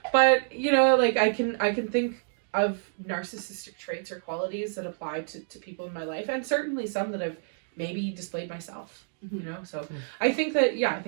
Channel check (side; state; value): left; silent; digital silence